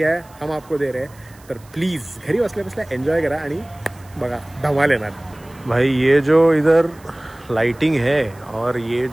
है, हम आपको दे रहे हैं. तर प्लीज़ घरी बसल्या बसल्या एन्जॉय करा आणि बघा धमाल येणार. भाई ये जो इधर लाइटिंग है और ये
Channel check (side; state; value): right; noise; hiss, 27 dB below the sound